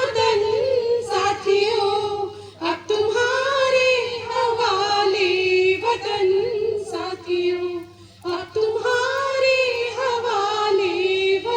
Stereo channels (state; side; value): identical; both; correlation 1.00